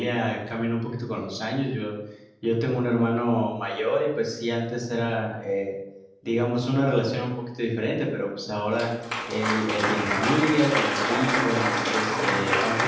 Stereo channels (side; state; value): both; identical; correlation 1.00